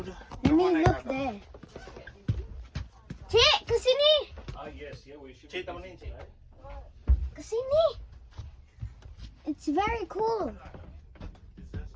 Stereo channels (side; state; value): both; identical; correlation 1.00